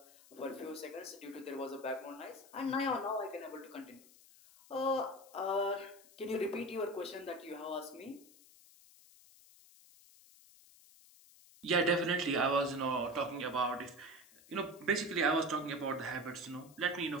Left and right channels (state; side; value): noise; left; hiss, 23 dB below the sound